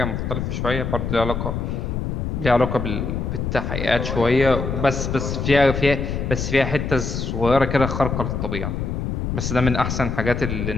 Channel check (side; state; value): left; noise; rumble, 2 dB below the sound